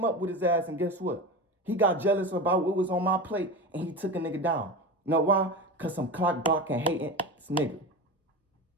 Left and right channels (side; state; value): both; normal; correlation 0.26